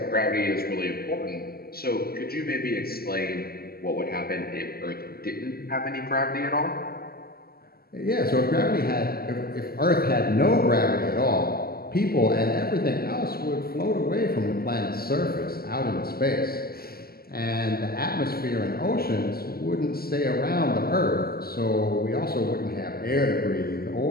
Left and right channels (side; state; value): right; late; 0.45 ms